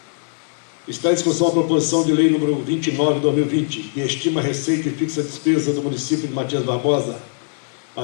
Está em discussão a proposição de lei número 29 de 2020, que estima a receita e fixa a despesa do município de Matias Barbosa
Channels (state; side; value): silent; right; digital silence